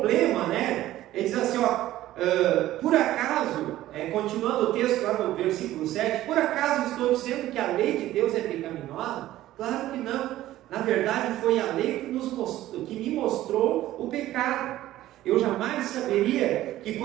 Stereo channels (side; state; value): left; quieter; 14.6 dB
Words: ele diz assim, por acaso, continuando o texto lá no versículo 7, por acaso estou dizendo que a lei de Deus é pecaminosa? Claro que não. Na verdade, foi a lei que me mostrou o pecado. Eu jamais saberia que